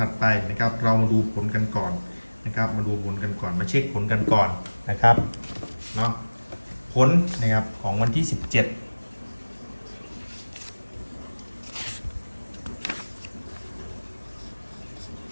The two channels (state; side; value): inverted; both; correlation -1.00